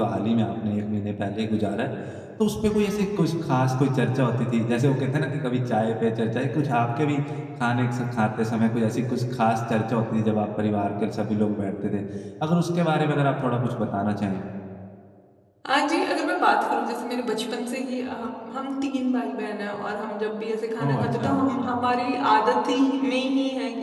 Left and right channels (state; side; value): identical; both; correlation 1.00